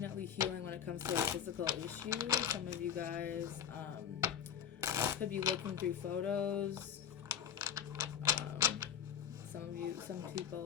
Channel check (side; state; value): right; quieter; 8.8 dB